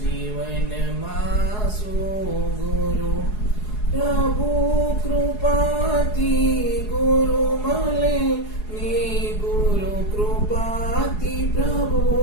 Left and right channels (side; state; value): right; late; 4.8 ms